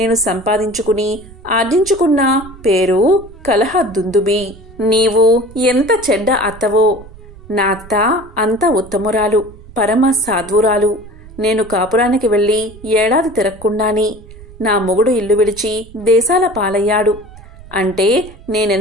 సంపాదించుకుని ఆర్జించుకున్న పేరు కలహ దుందుబి. నీవు ఎంత చెడ్డ అత్తవో! నా అత్త అంత ఉత్తమురాలు, పరమ సాధ్వురాలు. నేను కాపురానికి వెళ్ళి ఏడాది తిరగకుండాని నా మొగుడు ఇల్లు విడిచి దేశాల పాలయ్యాడు. అంటే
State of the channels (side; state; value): right; noise; rumble, 19 dB below the sound